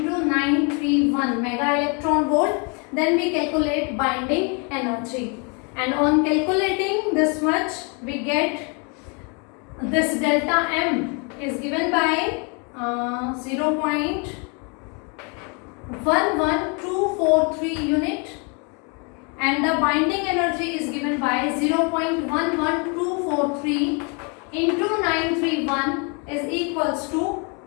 931 mega electron volt. Then we calculate binding energy. And on calculating this much, we get this delta M is given by 0.11243 unit, and the binding energy is given by 0.11243 into 931 is equals to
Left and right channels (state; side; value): quieter; right; 34.3 dB